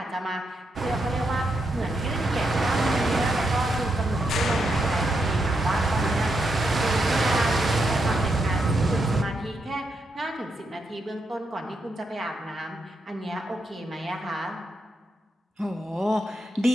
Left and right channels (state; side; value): normal; both; correlation 0.82